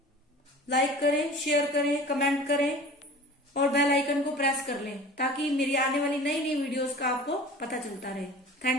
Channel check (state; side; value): normal; both; correlation 0.41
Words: लाइक करें, शेयर करें, कमेंट करें और बेल आइकन को प्रेस कर लें, ताकि मेरी आने वाली नई नई वीडियोस का आपको पता चलता रहे।